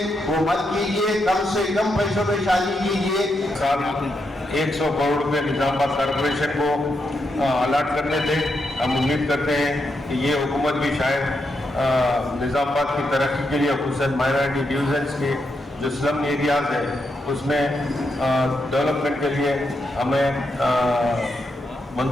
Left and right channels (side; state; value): both; normal; correlation 0.82